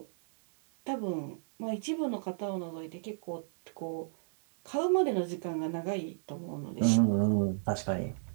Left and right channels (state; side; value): silent; left; 56 dB below the other